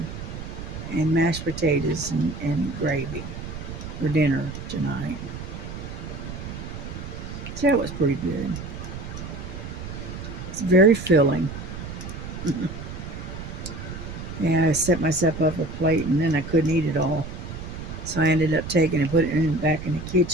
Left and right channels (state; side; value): noise; right; rumble, 9 dB below the sound